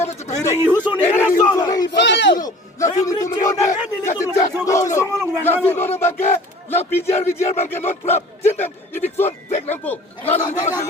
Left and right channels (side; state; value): both; normal; correlation 0.45